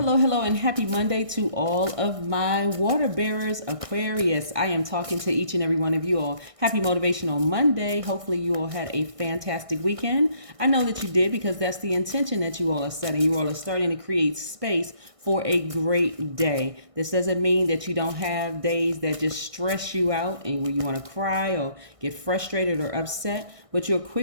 and happy Monday to all of my water bearers, Aquarius. I am talking to each and every one of you all. Happy Motivational Monday. Hopefully you all had a fantastic weekend. I know that you did because that's the intention that you all are setting. You all are starting to create space for a great day. This doesn't mean that you don't have days that just stress you out and where you want to cry or get frustrated or upset, but you're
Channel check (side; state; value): left; late; 1.6 ms